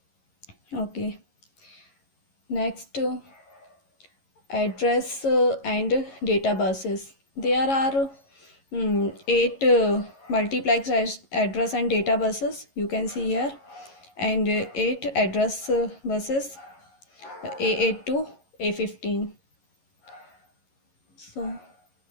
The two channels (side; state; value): right; late; 11 ms